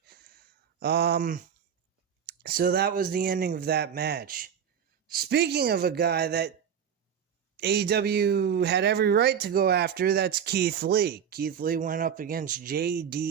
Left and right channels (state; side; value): quieter; left; 8.1 dB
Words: So that was the ending of that match. Speaking of a guy that AEW had every right to go after, that's Keith Lee. Keith Lee went up against